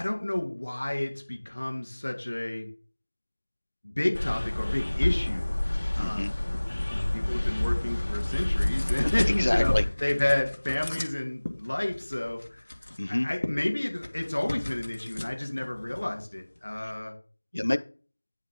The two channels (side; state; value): both; inverted; correlation -1.00